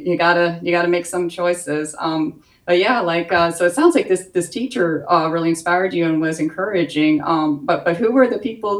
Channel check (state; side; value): identical; both; correlation 1.00